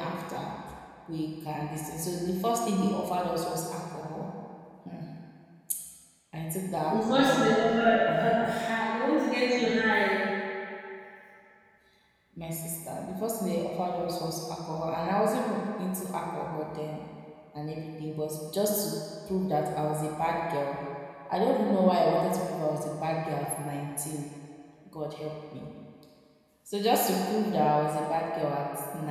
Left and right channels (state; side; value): identical; both; correlation 1.00